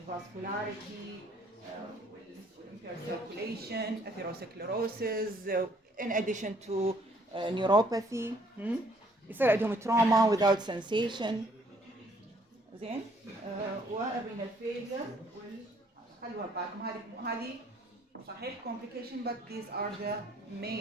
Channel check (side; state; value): both; normal; correlation 0.64